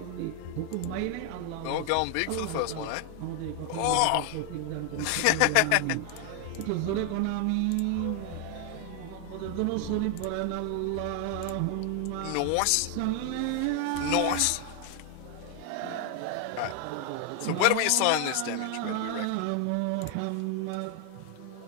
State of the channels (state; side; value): different; both; correlation 0.00